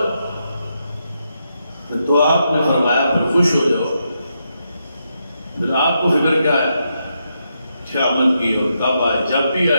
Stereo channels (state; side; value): inverted; both; correlation -0.82